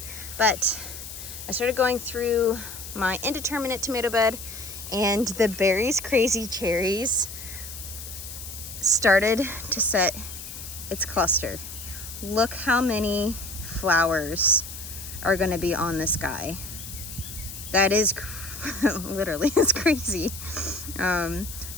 I started going through my indeterminate tomato bed, and the berries, crazy cherries, started to set its cluster. Look how many flowers are going to be on this guy. That is literally, it's crazy. So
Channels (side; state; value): left; noise; hiss, 11 dB below the sound